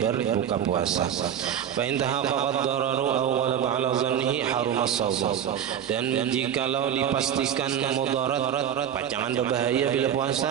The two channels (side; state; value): left; quieter; 9.4 dB